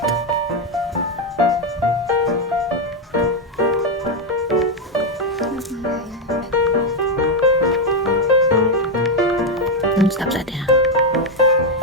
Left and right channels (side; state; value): both; normal; correlation 0.04